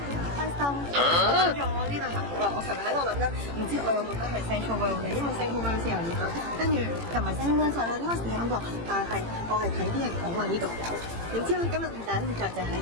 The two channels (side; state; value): left; late; 18 ms